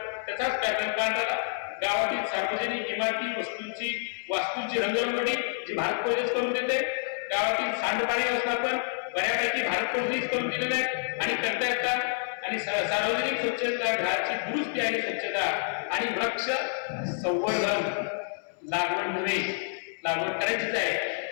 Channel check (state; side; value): silent; right; 59 dB below the other